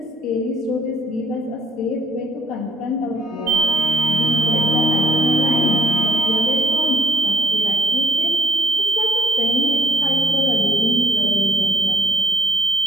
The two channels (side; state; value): both; normal; correlation 0.60